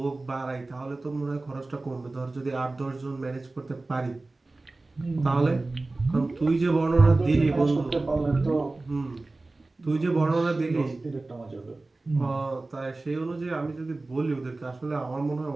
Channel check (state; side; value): quieter; left; 3.2 dB